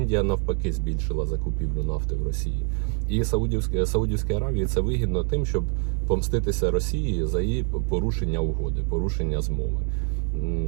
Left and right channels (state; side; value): quieter; left; 39.7 dB